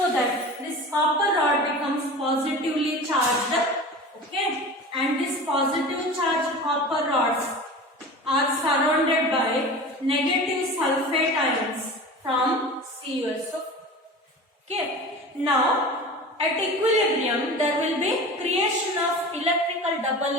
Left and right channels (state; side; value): normal; both; correlation 0.34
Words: that this copper rod becomes positively charged. Okay, and this positive charged copper rods are surrounded by negative sulfate ions from CuSO4. Okay, now at equilibrium there will be creation of electrical double